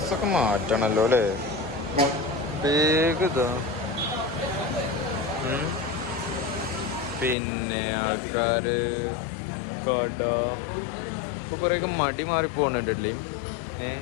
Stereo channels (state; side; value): drops out; right; at 7.4 s